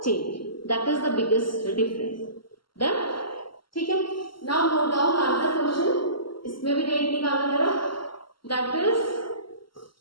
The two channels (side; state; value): right; late; 0.73 ms